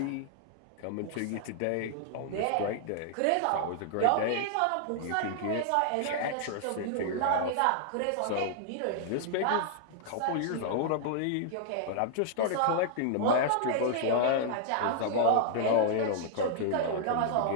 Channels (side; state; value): both; different; correlation -0.01